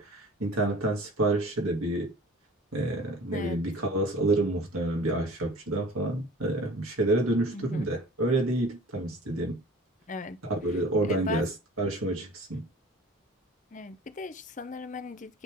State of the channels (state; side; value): normal; both; correlation 0.45